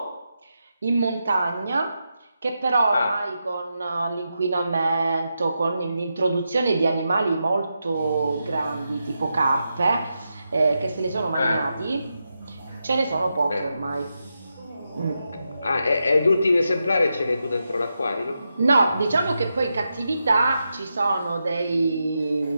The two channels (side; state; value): both; inverted; correlation -0.87